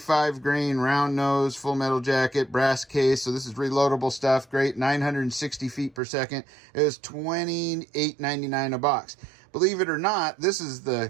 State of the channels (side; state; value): left; drops out; at 6.0 s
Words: grain round nose full metal jacket, brass case. So this is reloadable stuff. Great, 960 feet per second. It was $28.99 a box. Believe it or not, this is the